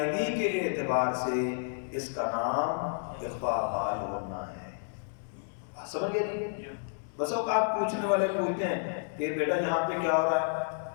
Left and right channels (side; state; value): right; silent; digital silence